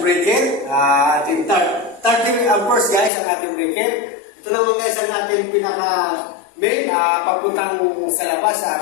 breaker. Ating 30 amperes guys ang ating breaker. Ito naman guys ang ating pinaka main papuntang sa labas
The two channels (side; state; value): right; drops out; at 3.1 s